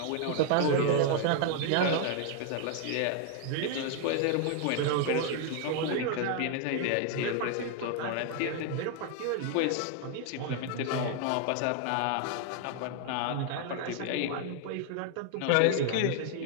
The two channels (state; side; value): different; both; correlation 0.00